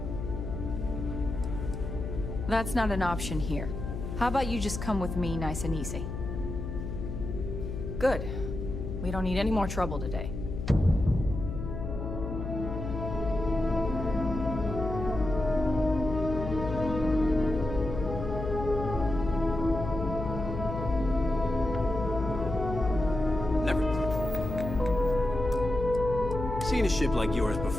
That's not an option here. How about you just come with me nice and easy? Good. We don't need any more trouble today. Never seen a ship like yours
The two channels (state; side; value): noise; left; hum, 6 dB below the sound